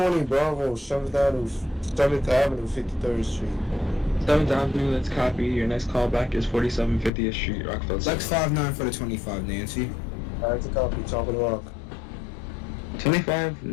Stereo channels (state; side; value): drops out; right; at 7.1 s